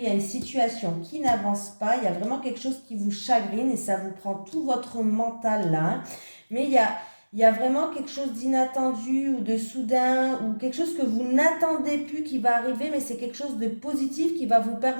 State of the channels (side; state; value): both; inverted; correlation -1.00